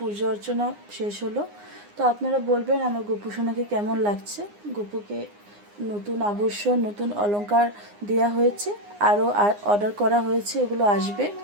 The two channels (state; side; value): late; left; 9.7 ms